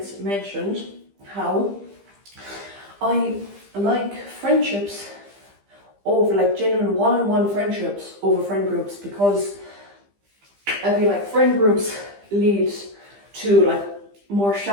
mentioned how I like friendships over, like, genuine one-on-one friendships over friend groups, because I feel like friend groups lead to like more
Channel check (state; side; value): late; left; 15 ms